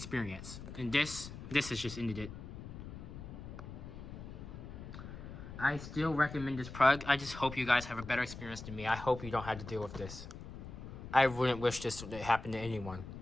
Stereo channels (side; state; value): left; noise; rumble, 11 dB below the sound